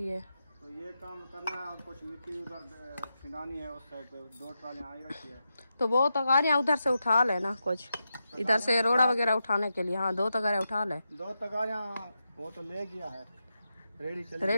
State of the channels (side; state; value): both; inverted; correlation -0.88